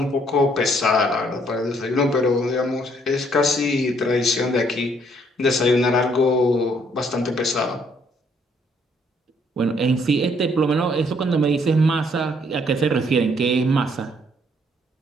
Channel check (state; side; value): normal; both; correlation 0.67